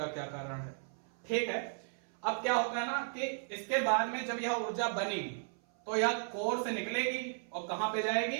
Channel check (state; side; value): silent; left; 54 dB below the other